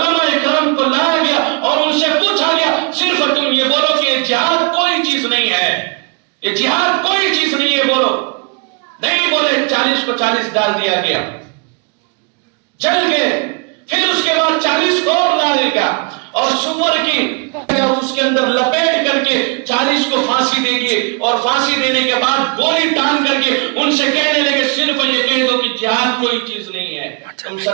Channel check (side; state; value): left; quieter; 34.2 dB